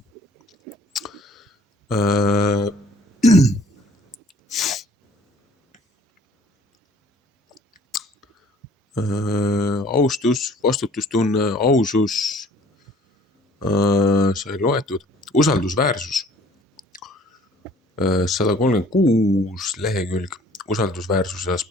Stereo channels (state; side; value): normal; both; correlation 0.55